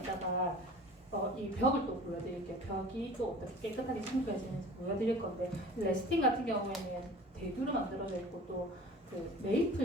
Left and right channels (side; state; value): both; normal; correlation 0.43